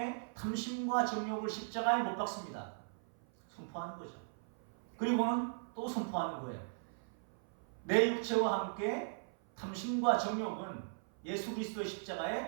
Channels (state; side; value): silent; left; 52 dB below the other